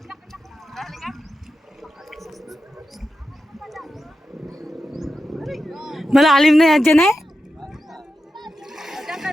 Malalim na yan dyan eh. Diyan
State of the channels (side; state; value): both; normal; correlation 0.89